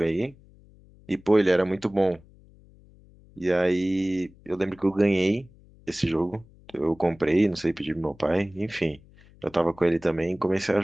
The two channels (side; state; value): left; noise; hum, 26 dB below the sound